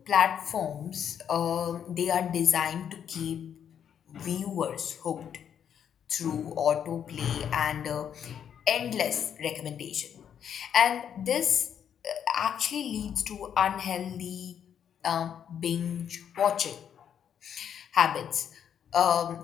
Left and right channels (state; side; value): quieter; right; 8.7 dB